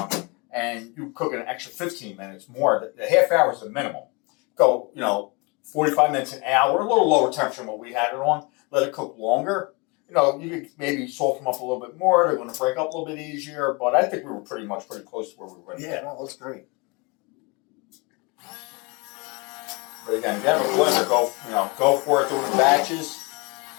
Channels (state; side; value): quieter; right; 28.7 dB